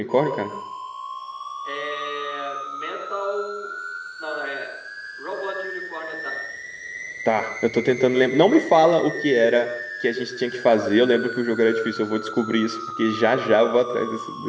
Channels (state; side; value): identical; both; correlation 1.00